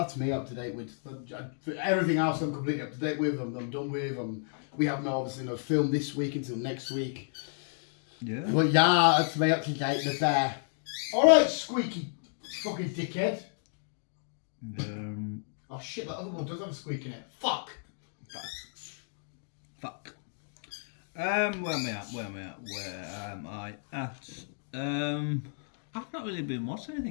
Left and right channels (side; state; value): right; silent; digital silence